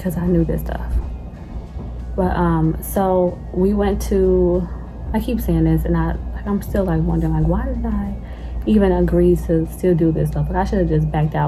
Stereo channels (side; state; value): both; identical; correlation 1.00